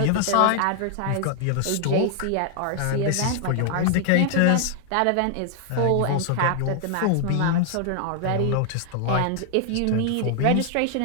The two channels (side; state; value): both; different; correlation 0.00